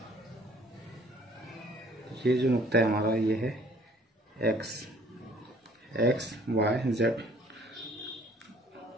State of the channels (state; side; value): normal; both; correlation 0.57